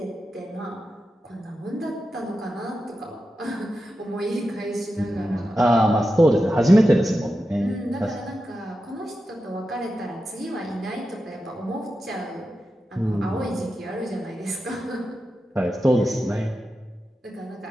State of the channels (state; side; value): normal; both; correlation 0.90